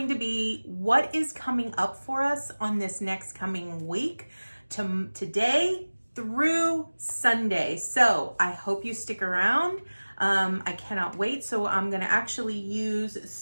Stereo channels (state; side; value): inverted; both; correlation -1.00